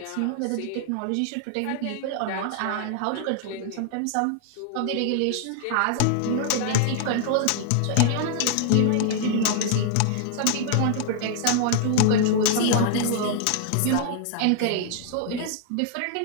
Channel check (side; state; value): both; different; correlation 0.00